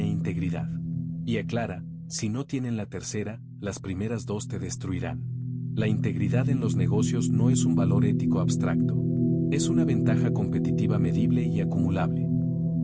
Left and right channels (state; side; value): identical; both; correlation 1.00